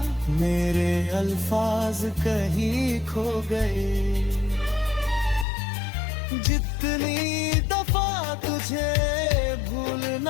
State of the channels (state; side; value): drops out; right; at 5.5 s